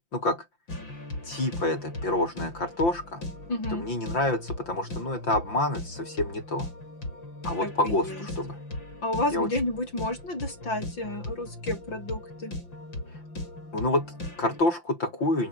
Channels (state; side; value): late; right; 5.8 ms